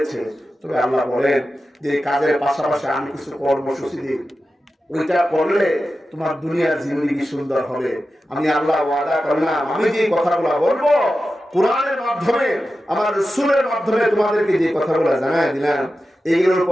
তবে আল্লাহ বলেন যে কাজের পাশাপাশি আমি কিছু কর্মসূচি দিই, ওইটা করলে তোমার দুনিয়ার জিন্দেগি সুন্দর হবে। আমি আল্লাহ ওয়াদা করলাম, আমি যে কথাগুলো বলবো কোরআনের মাধ্যমে, আমার রাসূলের মাধ্যমে তোমাদেরকে যে কথাগুলো জানাই দিলাম, এইগুলোর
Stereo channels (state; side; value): normal; both; correlation 0.92